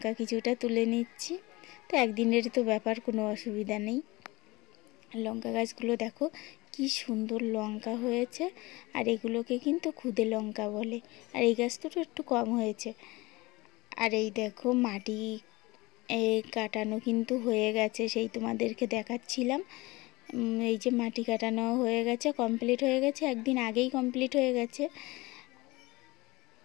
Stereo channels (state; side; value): quieter; right; 22.3 dB